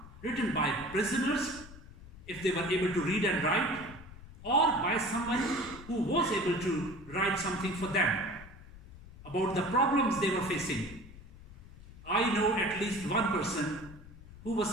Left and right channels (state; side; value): noise; left; rumble, 17 dB below the sound